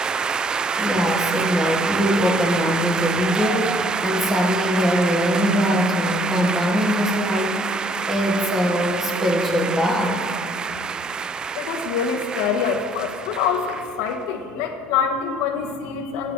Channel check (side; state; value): both; normal; correlation 0.61